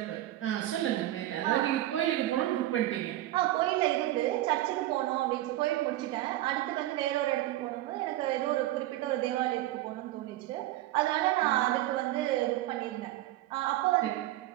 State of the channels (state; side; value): quieter; left; 15.3 dB